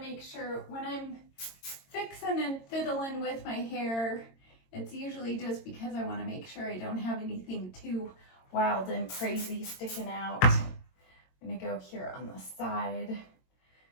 make sure when I'm fixing and fiddling with my hair, it's usually just because I want to make sure I don't have anything too wild and crazy sticking out. I'm going to go here on the side,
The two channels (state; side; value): late; right; 22 ms